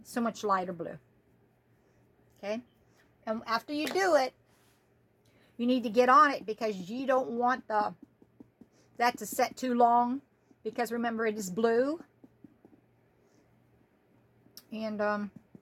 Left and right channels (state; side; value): identical; both; correlation 1.00